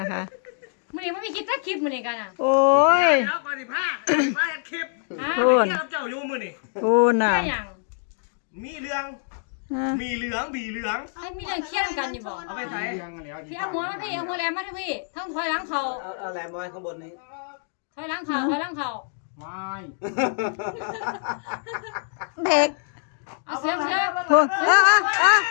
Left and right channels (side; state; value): right; silent; digital silence